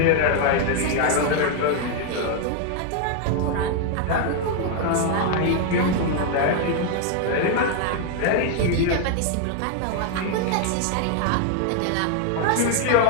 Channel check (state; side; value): different; both; correlation 0.00